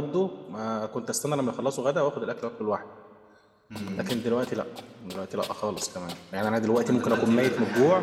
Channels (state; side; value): identical; both; correlation 1.00